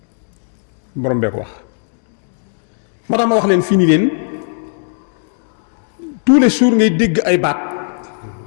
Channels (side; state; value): right; silent; 68 dB below the other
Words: borom bee ko wax moo tax ma wax leen fii nii leen tous les jours ngay dégg ay baat